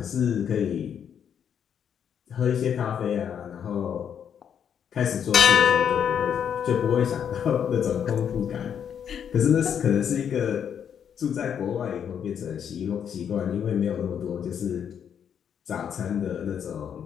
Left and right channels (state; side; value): quieter; right; 8.3 dB